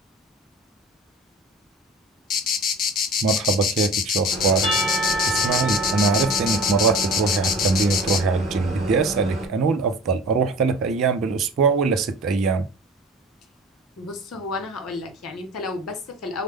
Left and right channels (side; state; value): both; normal; correlation 0.40